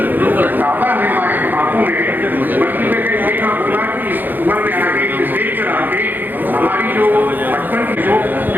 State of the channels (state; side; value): late; left; 0.088 ms